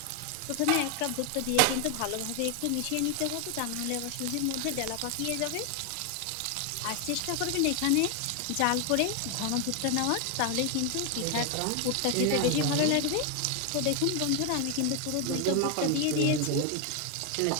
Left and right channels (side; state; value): both; different; correlation 0.01